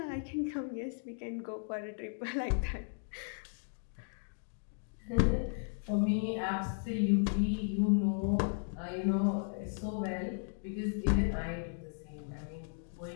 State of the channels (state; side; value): silent; right; digital silence